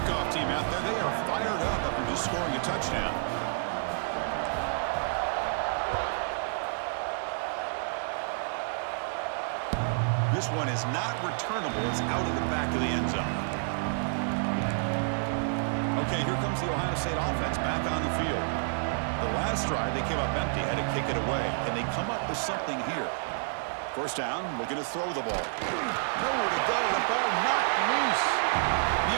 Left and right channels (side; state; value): left; silent; digital silence